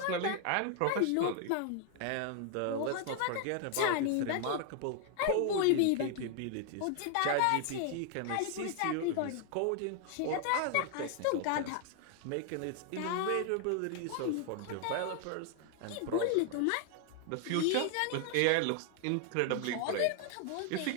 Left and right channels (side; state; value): both; different; correlation 0.00